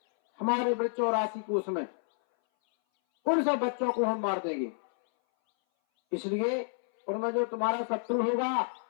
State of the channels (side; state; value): right; silent; 58 dB below the other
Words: हमारे बच्चों राशि कोष में, उन सब बच्चों को हम मार देंगे। इसलिए उनमें जो तुम्हारा शत्रु होगा